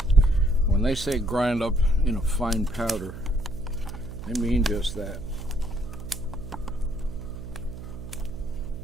when they say grind up in a fine powder, they mean just that.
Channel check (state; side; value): noise; right; hum, 11 dB below the sound